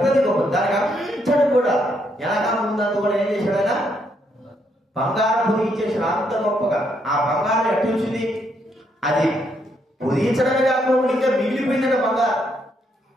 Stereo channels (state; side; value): normal; both; correlation 0.75